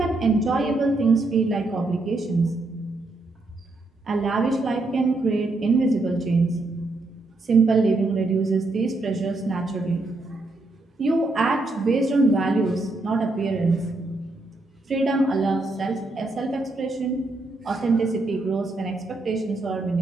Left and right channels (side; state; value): left; quieter; 3.0 dB